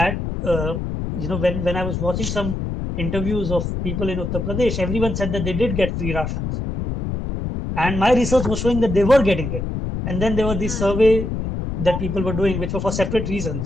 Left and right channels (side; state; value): left; noise; rumble, 3 dB below the sound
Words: when I was watching some interviews of people in Uttar Pradesh, everyone said that they did get free rations, and my research was showing that they were getting it. And then there were these Hmm. survey that people were doing, which were for separate